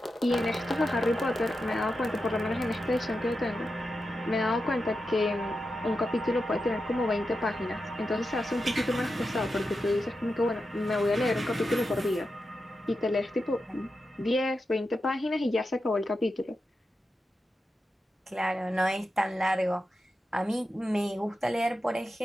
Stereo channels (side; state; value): both; normal; correlation 0.89